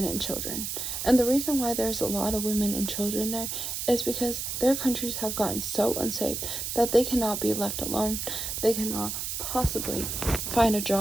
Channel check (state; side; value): noise; right; hiss, 4 dB below the sound